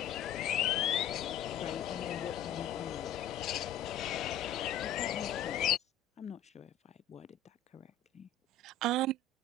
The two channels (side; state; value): right; quieter; 5.4 dB